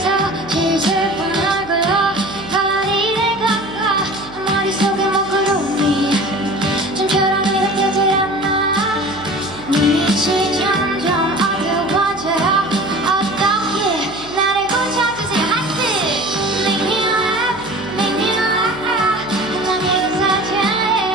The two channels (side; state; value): right; noise; hum, 19 dB below the sound